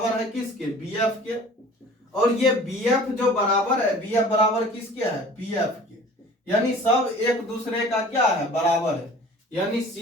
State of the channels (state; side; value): normal; both; correlation 0.46